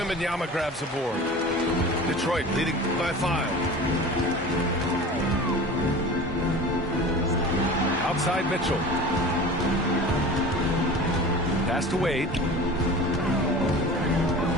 grabs the board. Detroit leading by 5. Outside Mitchell. Pass to Wade.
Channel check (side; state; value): both; normal; correlation 0.37